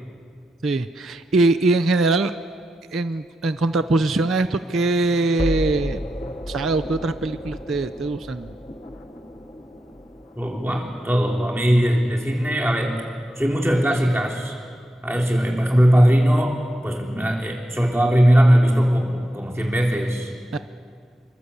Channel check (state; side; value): normal; both; correlation 0.87